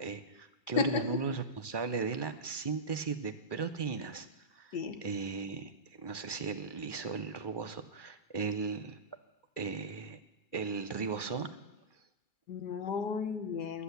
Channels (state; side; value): late; right; 2.3 ms